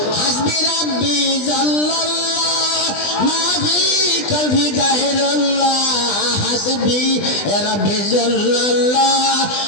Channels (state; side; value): late; right; 20 ms